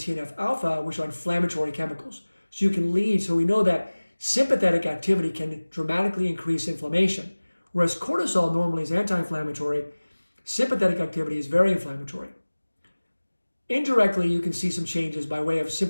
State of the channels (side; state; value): both; inverted; correlation -1.00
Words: which are inflammatory chemicals. So we know that sympathetic activity can dramatically increase inflammation. Whereas cortisol normally is anti-inflammatory, sympathetic activity is very inflammatory. Indirectly, you can see some changes by way of